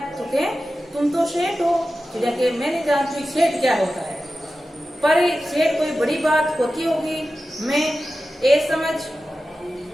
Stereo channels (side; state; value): both; normal; correlation 0.93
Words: तो क्या तुम तो सेठ हो, चिड़िया के मैं नहीं जानती सेठ क्या होता है, पर सेठ कोई बड़ी बात होती होगी, मैं ये समझ